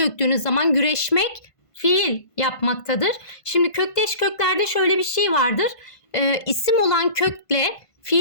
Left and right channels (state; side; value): late; right; 1.5 ms